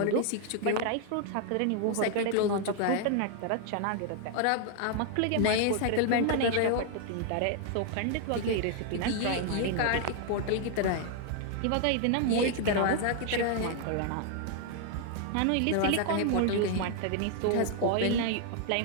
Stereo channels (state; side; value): different; both; correlation 0.00